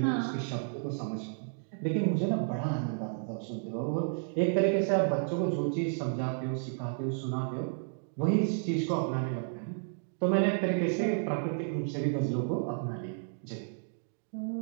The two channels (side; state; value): left; silent; digital silence